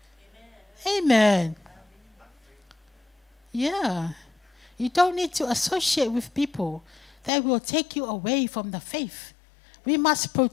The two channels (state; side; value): drops out; right; at 7.3 s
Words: Amen. Yeah. You don't need to associate with people that will take you away from the faith. We must